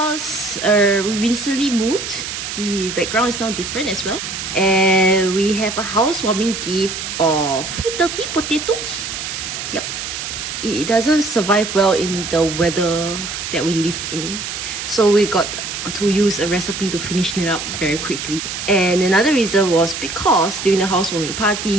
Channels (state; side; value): noise; right; hiss, 6 dB below the sound